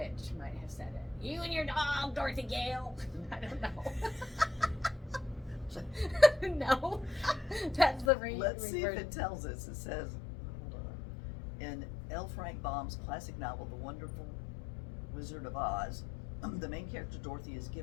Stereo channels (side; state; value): right; drops out; at 8.1 s